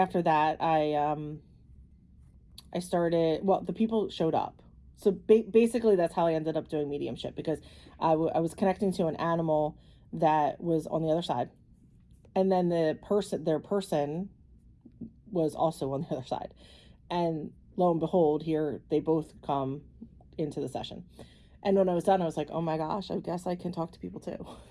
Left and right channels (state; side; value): identical; both; correlation 1.00